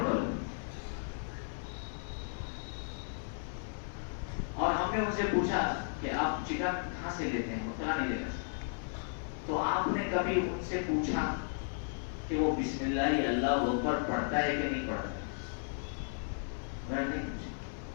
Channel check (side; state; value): right; silent; 55 dB below the other